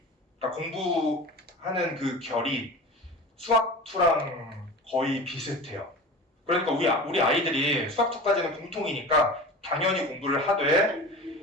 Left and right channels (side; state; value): both; normal; correlation 0.34